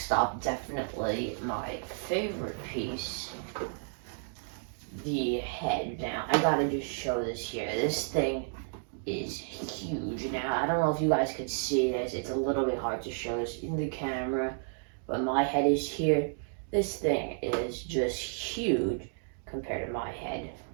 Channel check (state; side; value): silent; left; digital silence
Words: up, definitely my favorite piece, the head. Now, I gotta just show this here. This thing is huge. Now, I don't know if you guys could see this. It's a little bit hard to show this in the camera, but my head is here. This thing is just huge compared to my head.